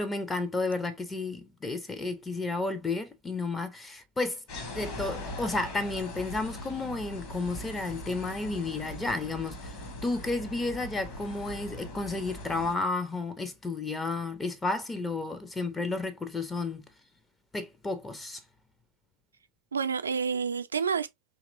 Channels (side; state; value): both; normal; correlation 0.49